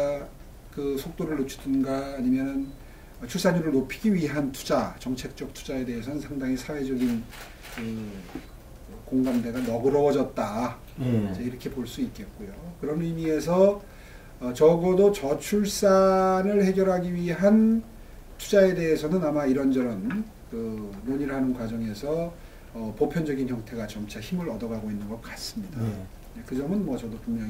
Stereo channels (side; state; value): both; identical; correlation 1.00